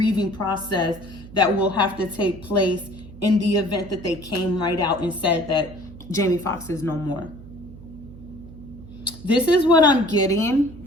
process that will have to take place in the event that they came right out and said that Jaime Foxx is no more. This is what I'm getting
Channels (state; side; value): noise; right; hum, 17 dB below the sound